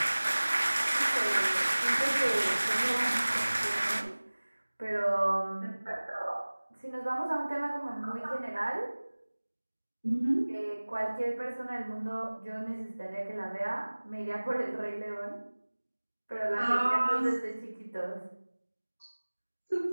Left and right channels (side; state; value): both; inverted; correlation -1.00